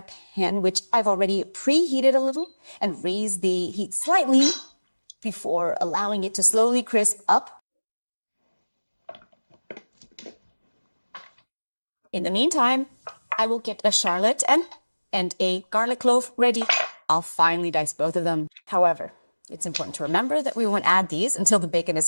pan, which I've already preheated a little, and raise the heat slightly before allowing it to slowly crisp up. In the meantime, I will get a shallot and a garlic clove ready. I'll finely dice both of them. However, it's important to remember that we won't add these until the bacon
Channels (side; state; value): both; inverted; correlation -1.00